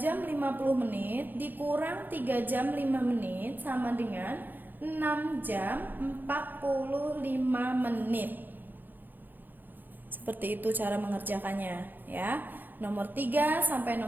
jam 50 menit dikurang 3 jam 5 menit sama dengan 6 jam 45 menit. Seperti itu cara mengerjakannya ya. Nomor 3 sampai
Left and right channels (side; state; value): left; late; 0.089 ms